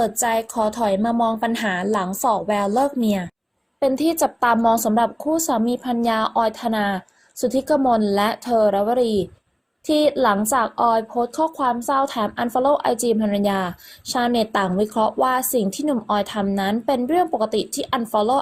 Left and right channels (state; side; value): identical; both; correlation 1.00